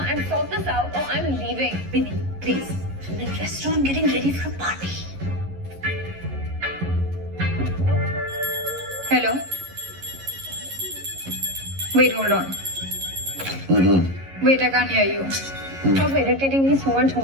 sort this out, or I'm leaving. Binny, please. I'm in a restaurant getting ready for a party. Hello. Wait, hold on. Wait, I can't hear you. Stop irritating me so much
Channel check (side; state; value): left; late; 11 ms